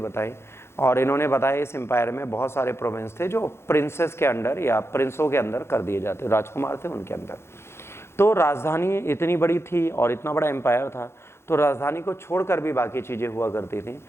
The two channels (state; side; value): late; right; 0.12 ms